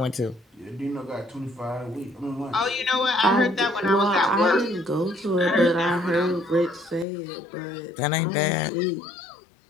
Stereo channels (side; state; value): right; drops out; at 7.1 s